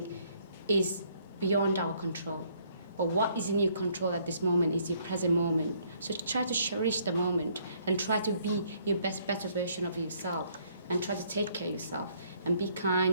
is beyond our control. But what is in your control at this moment is your present moment. So try to cherish the moment and try to be your better version of yourself and try to take care of yourself and be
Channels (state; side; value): inverted; both; correlation -0.66